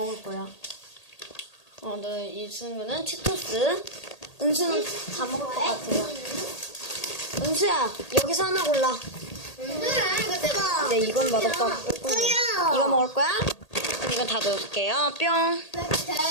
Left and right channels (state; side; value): late; right; 1.8 ms